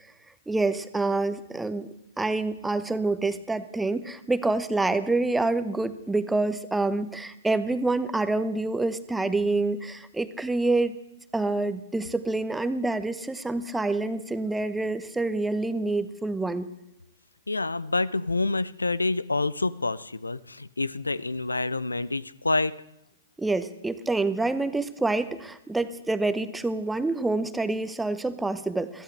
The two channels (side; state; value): both; normal; correlation 0.55